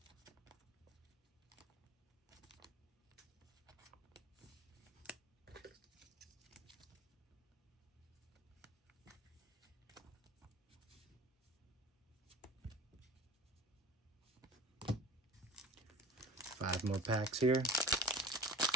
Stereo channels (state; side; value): normal; both; correlation 0.38